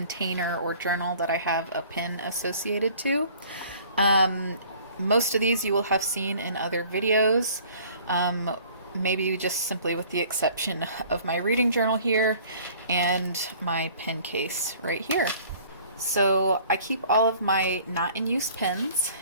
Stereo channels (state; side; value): inverted; both; correlation -0.52